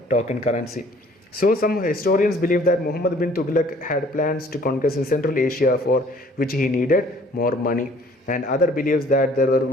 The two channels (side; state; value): both; normal; correlation 0.56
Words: token currency. So some historians believe that Muhammad bin Tughlaq had plans to conquest in Central Asia, for which he needed more money. And other believes that there were